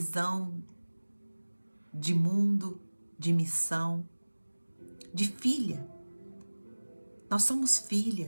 de mundo, de missão, de filha. Nós somos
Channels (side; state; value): both; inverted; correlation -1.00